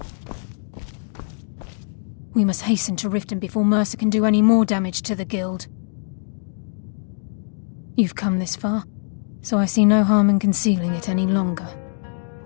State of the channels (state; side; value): silent; right; 64 dB below the other